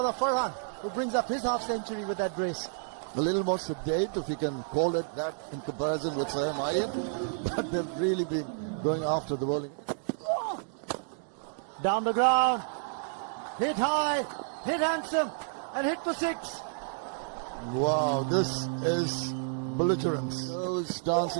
Farhan. who brings up his half-century with that brace. A little more sedate, if you can call it that, in comparison with Sam Ian. But they've really been going after the bowling. Down the ground. Hit high, hit handsome, and hit for 6. Wow, this is belligerence. Those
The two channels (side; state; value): left; silent; digital silence